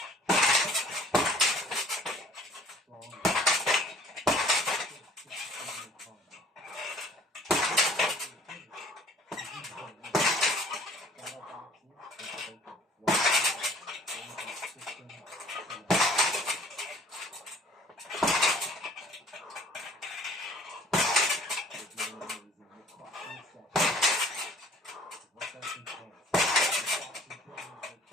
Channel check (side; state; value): both; normal; correlation 0.53